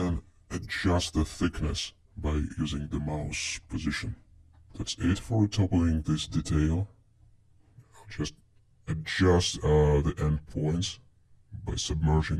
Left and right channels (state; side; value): identical; both; correlation 1.00